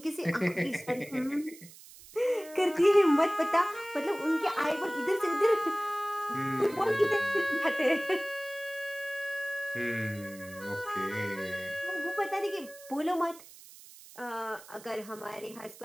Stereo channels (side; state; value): right; noise; hiss, 19 dB below the sound